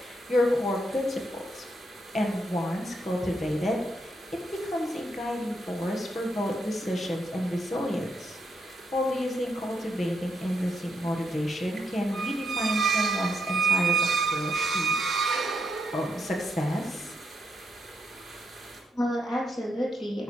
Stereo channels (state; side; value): normal; both; correlation 0.80